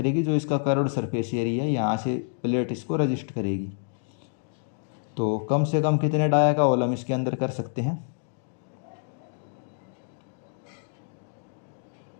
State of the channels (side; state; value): right; silent; digital silence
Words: जो इसका कर्व्ड सरफेस एरिया है यहाँ से प्लेट इसको रजिस्ट करेगी। तो कम से कम कितने डाया का होल हम इसके अंदर कर सकते हैं,